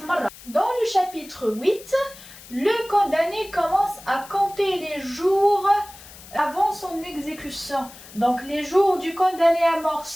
مره. Dans le chapitre 8, le condamné commence à compter les jours avant son exécution. Donc les jours du condamné à mort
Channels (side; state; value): left; noise; hiss, 19 dB below the sound